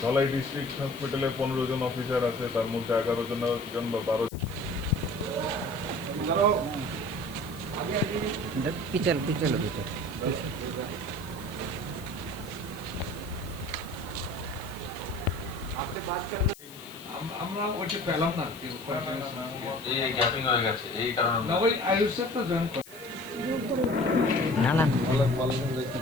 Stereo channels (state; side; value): noise; left; hiss, 19 dB below the sound